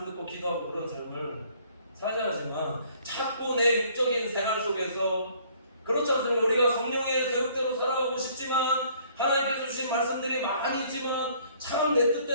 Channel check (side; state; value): both; inverted; correlation -0.60